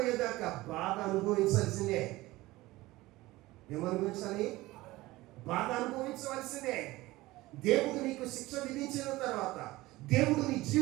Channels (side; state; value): left; quieter; 18.9 dB